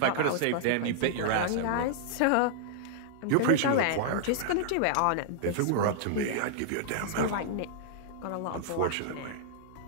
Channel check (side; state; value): both; different; correlation -0.01